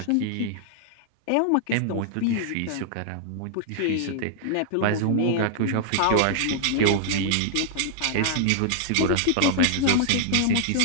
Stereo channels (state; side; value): different; both; correlation -0.01